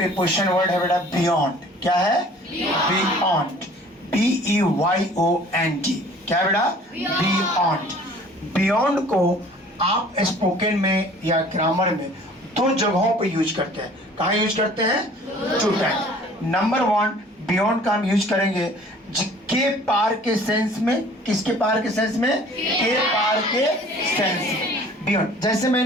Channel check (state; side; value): normal; both; correlation 0.50